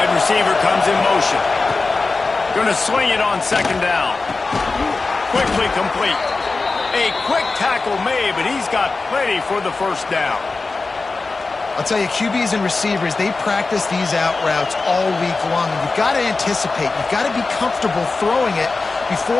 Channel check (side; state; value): right; quieter; 3.8 dB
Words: receiver comes in motion. Going to swing it on second down. Quickly complete. A quick tackle made, but he's got plenty for the first down. I'll tell you, QBs and receivers, they practice these out routes all week long. And you've got to anticipate. You've got to be comfortable throwing it